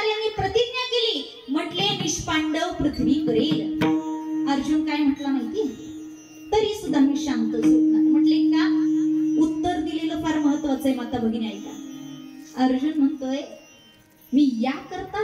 प्रतिज्ञा केली, म्हटले निष्पांडव पृथ्वी करेल. अर्जुन काय म्हटला माहिती? तरी सुद्धा मी शांत झोपणार. म्हटले का? उत्तर दिलेलं फार महत्वाचं आहे माता भगिनी, ऐका. अर्जुन म्हणतोय, मी या करता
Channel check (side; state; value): both; identical; correlation 1.00